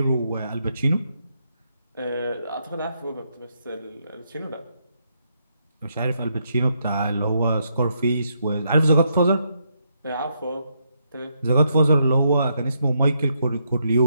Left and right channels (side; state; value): both; inverted; correlation -0.78